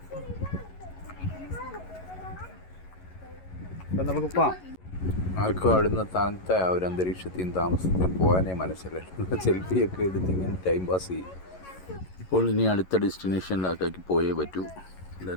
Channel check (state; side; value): late; right; 11 ms